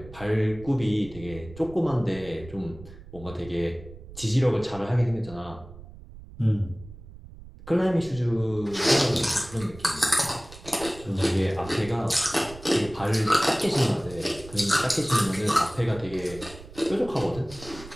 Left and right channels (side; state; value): right; noise; rumble, 17 dB below the sound